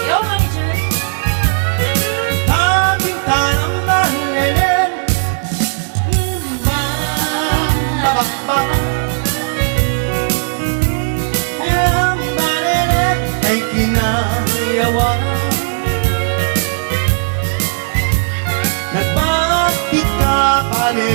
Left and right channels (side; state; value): left; silent; 59 dB below the other